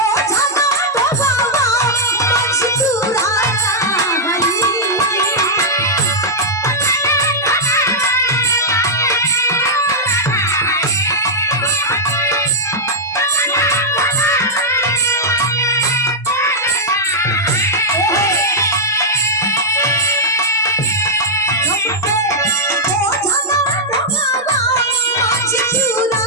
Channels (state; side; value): normal; both; correlation -0.06